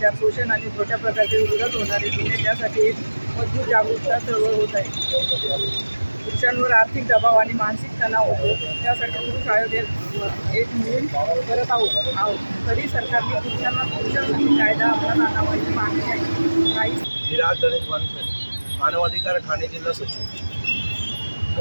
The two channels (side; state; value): both; inverted; correlation -1.00